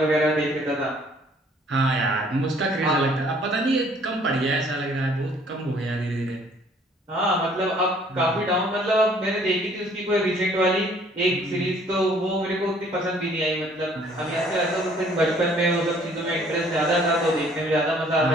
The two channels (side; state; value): both; normal; correlation 0.59